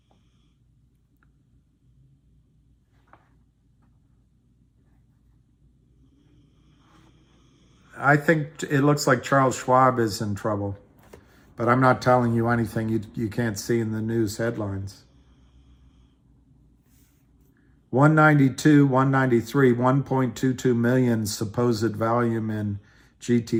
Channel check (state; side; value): identical; both; correlation 1.00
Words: I think it looks like Charles Schwab is in trouble, but I'm not telling you anything you can't see in the news headlines. 192, 193, 1.22 million supposed volume in